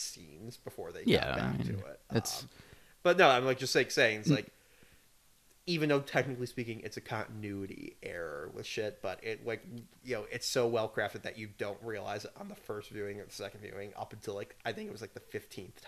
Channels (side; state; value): both; identical; correlation 1.00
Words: before they got back to it. But no, I'm like just like saying, it's like, even though technically speaking it's a continuity error with shit, but it, like, you know, it's so well crafted that you don't realize it on the first viewing or the second viewing up until like, I think it was like the 15th